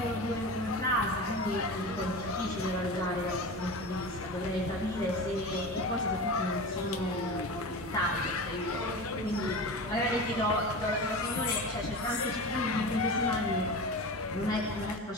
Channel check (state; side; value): normal; both; correlation 0.29